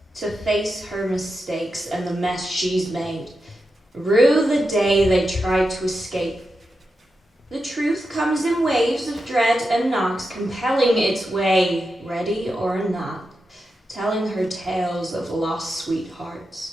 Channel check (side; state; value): both; normal; correlation 0.88